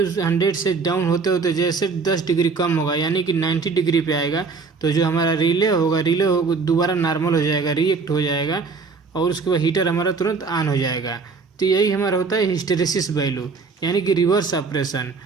100 से डाउन होते होते जैसे 10 डिग्री कम होगा यानी कि 90 डिग्री पे आएगा, तो जो हमारा रिले होगा दोबारा नॉर्मल हो जाएगा, रिएक्ट हो जाएगा और उसके बाद हीटर हमारा तुरंत ऑन हो जाएगा। तो यही हमारा होता है हिस्टेरेसिस वैल्यू, यानी कि रिवर्स ऑपरेशन।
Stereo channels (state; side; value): quieter; left; 4.7 dB